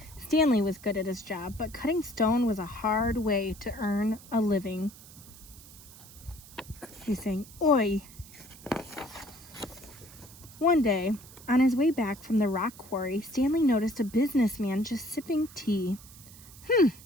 Stanley was good at his job, but cutting stone was a hard way to earn a living. He's saying, "Oi!" One day, on his way back from the rock quarry, Stanley noticed a businessman just sipping tea.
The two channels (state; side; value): noise; right; hiss, 19 dB below the sound